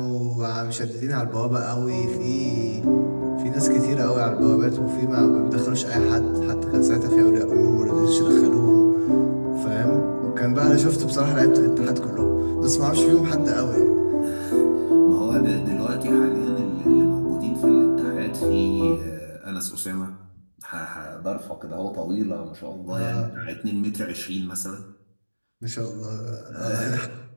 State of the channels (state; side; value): inverted; both; correlation -1.00